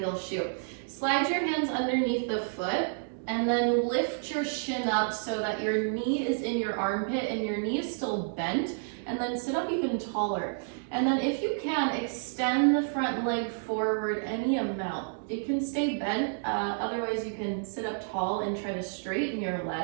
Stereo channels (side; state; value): left; silent; 58 dB below the other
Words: shoe. Slide your hands underneath the foot and then lift your shin up so that your knee is in your armpit and your knee is still bent, and then sit up even taller. And then if you can, extend the front leg forward any amount. It can stay bent, otherwise you can sit up tall and try to straighten your